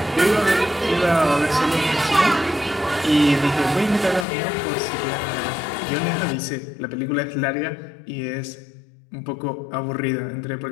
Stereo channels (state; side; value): drops out; right; at 4.2 s